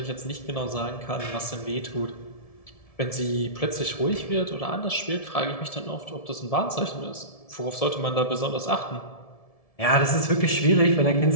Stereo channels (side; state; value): right; late; 1.7 ms